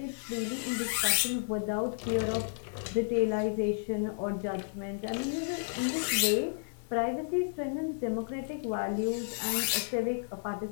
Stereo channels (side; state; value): right; silent; digital silence